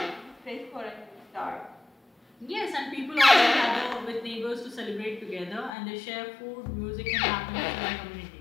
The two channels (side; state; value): right; drops out; at 5.8 s